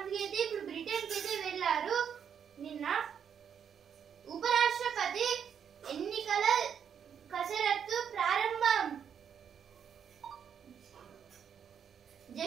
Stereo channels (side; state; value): left; quieter; 7.9 dB